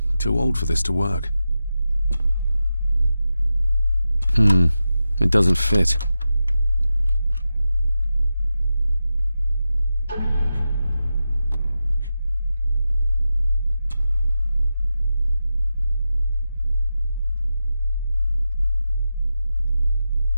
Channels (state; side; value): inverted; both; correlation -0.91